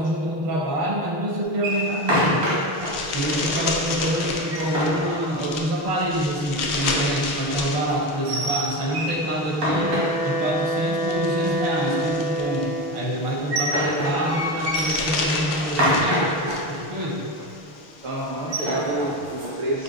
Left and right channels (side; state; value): left; late; 6.5 ms